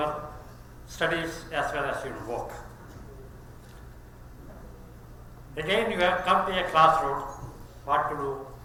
studies as well as your work. Again, you have come to a crossroads, what to do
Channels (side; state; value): both; identical; correlation 1.00